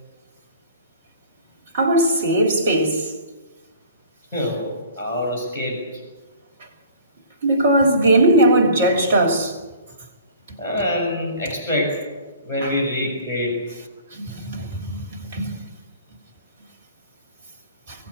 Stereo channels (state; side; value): inverted; both; correlation -0.47